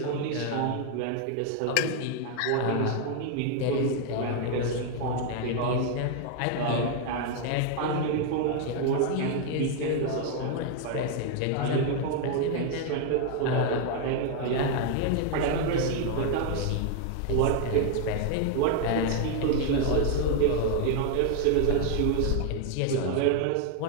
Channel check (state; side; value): different; both; correlation 0.00